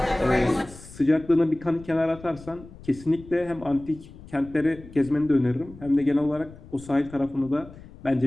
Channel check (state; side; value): noise; left; rumble, 19 dB below the sound